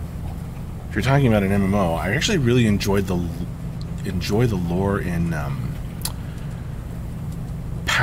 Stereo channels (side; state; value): both; identical; correlation 1.00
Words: If you're talking about an MMO, I actually really enjoy the lore in